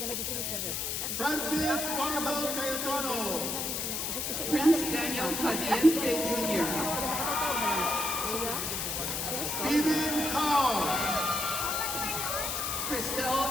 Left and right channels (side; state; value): left; noise; hiss, 2 dB below the sound